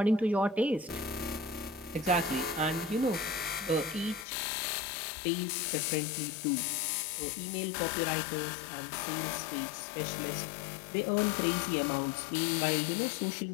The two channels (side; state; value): right; drops out; at 4.2 s